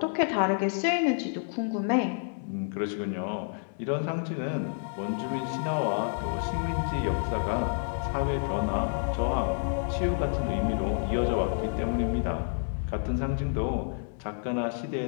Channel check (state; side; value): silent; right; 58 dB below the other